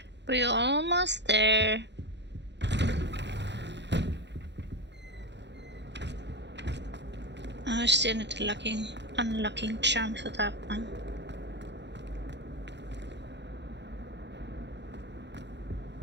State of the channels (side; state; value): left; late; 0.51 ms